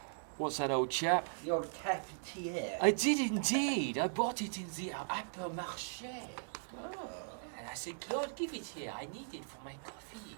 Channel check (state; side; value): silent; left; digital silence